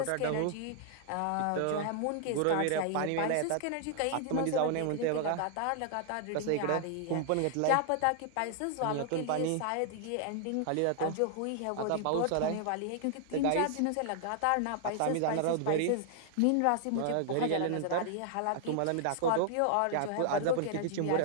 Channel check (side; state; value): both; different; correlation 0.00